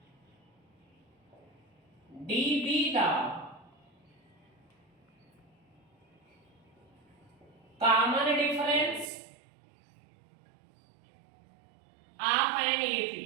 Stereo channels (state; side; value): drops out; left; at 9.1 s